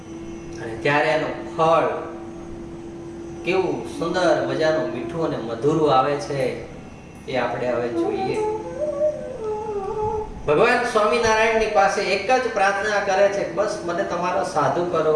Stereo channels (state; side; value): identical; both; correlation 1.00